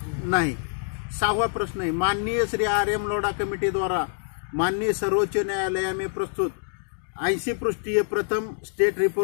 नाही। 6वां प्रश्न है, माननीय श्री RM लोढा कमेटी द्वारा माननीय सर्वोच्च न्यायालय में प्रस्तुत 80 पृष्ठीय प्रथम स्टेट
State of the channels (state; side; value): silent; right; digital silence